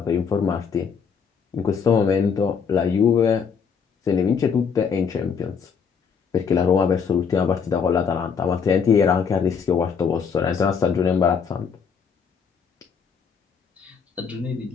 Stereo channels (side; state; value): right; quieter; 6.4 dB